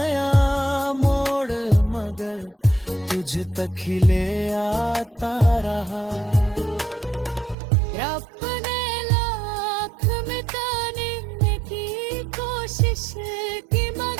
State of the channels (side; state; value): left; drops out; at 7.6 s